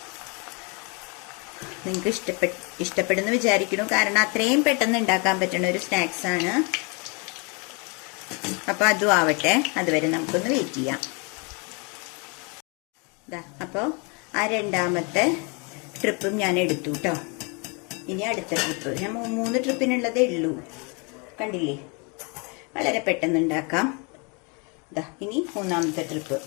നിങ്ങൾക്ക് ഇഷ്ടപ്പെടുന്നു വിചാരിക്കുന്നു. കാരണം അത്രയും പെട്ടെന്ന് ഉണ്ടാക്കാൻ പറ്റുന്ന ഒരു സ്നാക്സാണ്. അപ്പോൾ അതും ആവട്ടെ, അതുവരെ നമുക്കൊന്ന് വെയിറ്റ് ചെയ്യാം. അപ്പോൾ ആ രണ്ടാമത്തെ ട്രിപ്പും ഞാൻ എടുത്തു കേട്ടോ. ഇനി അടുത്ത ട്രിപ്പ്, ഞാൻ 3 ട്രിപ്പിനുള്ളതേ ഉള്ളൂ. കണ്ടില്ലേ, വളരെ പെട്ടെന്ന് ഉണ്ടാക്കാം. ഇനി മൂന്നാമത്തെ ട്രിപ്പ്.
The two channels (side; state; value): right; quieter; 32.6 dB